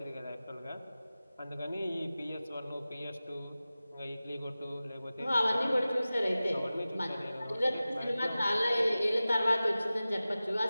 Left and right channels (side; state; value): both; inverted; correlation -0.96